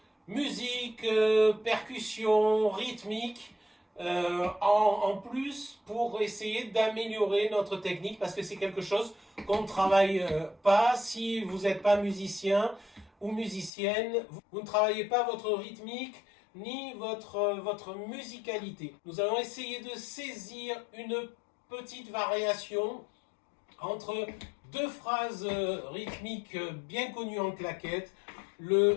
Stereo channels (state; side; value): drops out; right; at 13.7 s